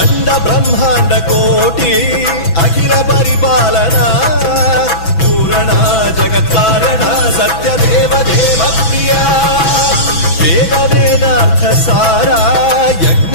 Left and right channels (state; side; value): late; right; 6.0 ms